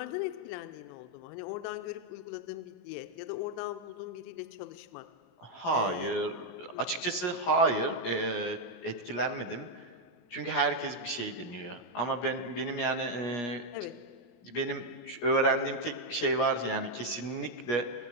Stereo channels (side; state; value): right; late; 17 ms